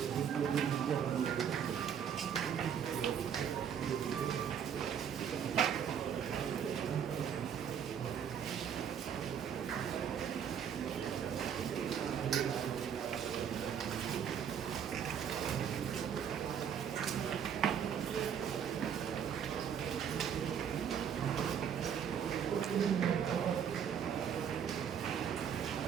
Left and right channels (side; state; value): left; quieter; 8.1 dB